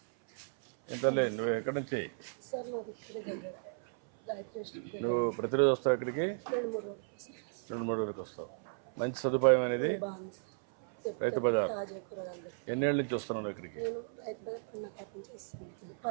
ఎంతలే నువ్వు ఎక్కడి నుంచి? నువ్వు ప్రతిరోజు వస్తావు ఇక్కడికి? 2-3 రోజులకు వస్తావు. మంచి సదుపాయం అనేది రైతు బజార్. ఎన్నేళ్ళ నుంచి వస్తున్నావు ఇక్కడికి?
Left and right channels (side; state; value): left; silent; 55 dB below the other